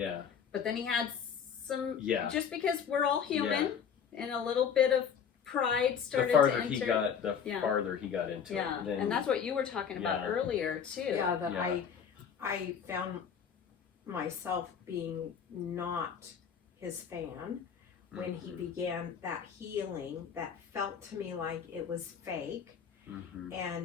But then he had some, Yeah. just because we're all human, and a little bit of pride started The to farther enter. he got, the Yeah. farther he got into Yeah, it. Then, and that's what you were talking about Yeah. earlier too. Yeah, that Yeah. I found myself being not his fan when he Mhm. began that healing that felt to me like it was fake, Mhm.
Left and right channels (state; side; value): quieter; right; 7.3 dB